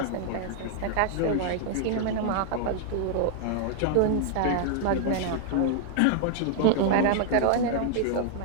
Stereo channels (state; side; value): different; both; correlation 0.00